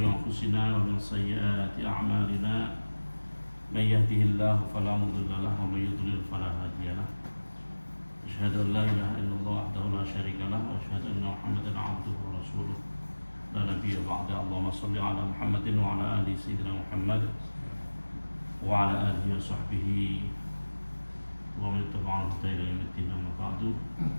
anfusina wa min sayyiati a'malina. May yahdihillahu fala mudilla lahu wa may yudlil fala hadiya lahu. Asyhadu an la ilaha illallah wahdahu la syarika lahu wa asyhadu anna Muhammadan 'abduhu wa rasuluh. La nabiyya ba'da. Allahumma shalli 'ala Muhammadin wa 'ala ali sayyidina Muhammad wa 'ala alihi wa sahbihi wa man tabi'ahum bi ihsan ila yaumid amma ba'du.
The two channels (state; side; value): inverted; both; correlation -1.00